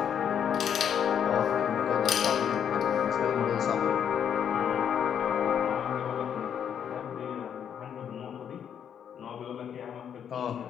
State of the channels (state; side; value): quieter; right; 8.5 dB